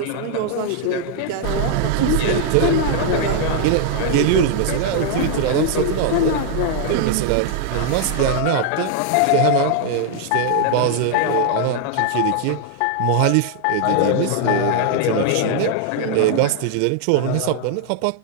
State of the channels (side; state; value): both; different; correlation 0.00